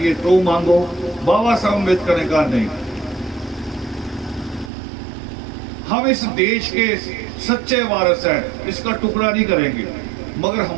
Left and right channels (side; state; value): left; drops out; at 4.7 s